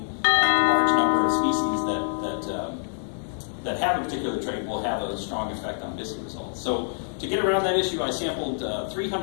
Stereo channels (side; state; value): right; silent; 61 dB below the other